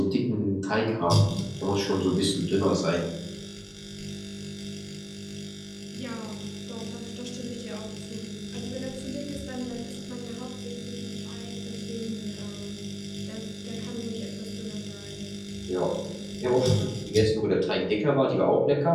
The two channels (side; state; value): both; identical; correlation 1.00